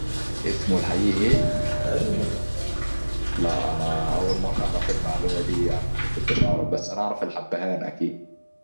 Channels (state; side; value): inverted; both; correlation -1.00